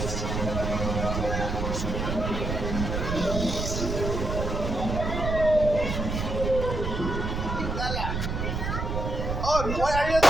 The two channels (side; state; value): right; noise; rumble, 2 dB below the sound